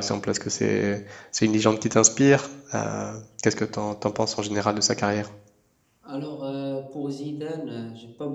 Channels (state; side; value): identical; both; correlation 1.00